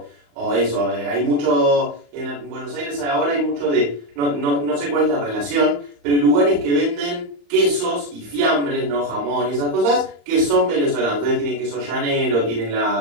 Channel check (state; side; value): late; left; 35 ms